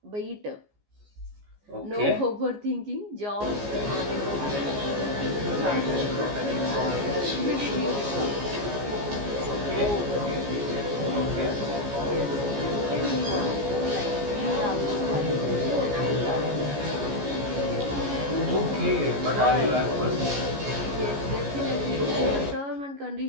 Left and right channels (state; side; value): late; left; 14 ms